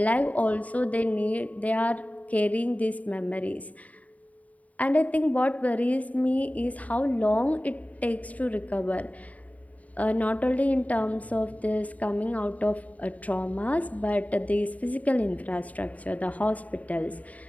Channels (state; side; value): late; right; 0.071 ms